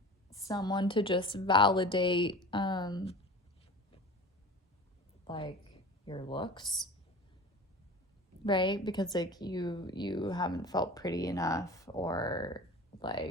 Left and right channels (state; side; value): normal; both; correlation 0.37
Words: someone to just validate, like, your looks, right? Because, like, you haven't felt pretty enough or,